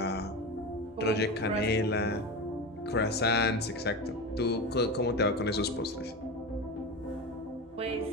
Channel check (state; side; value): normal; both; correlation 0.23